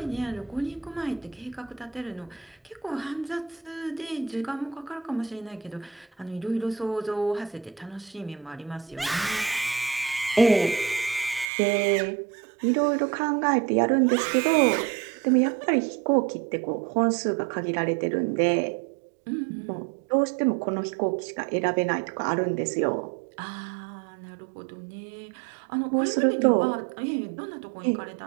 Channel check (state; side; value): drops out; left; at 11.5 s